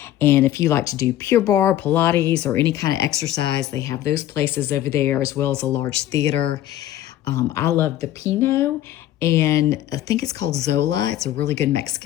And if you like to do Pure Barre, Pilates, or any kind of exercise, they have those places over there, as well as a large theater. I love the Pinot, and I think it's called Zola. It's a really good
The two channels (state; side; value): quieter; right; 13.1 dB